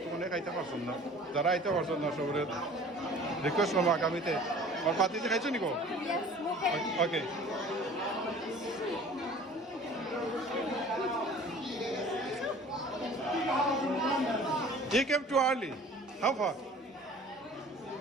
তো অনেক আইতে পারছেন না যারা আইতে পারছেন না সবের রিকোয়েস্ট করবো আগামীতে আর পাতিতে খাইছো নিকো ওকে He came too early. How far?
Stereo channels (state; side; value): normal; both; correlation 0.47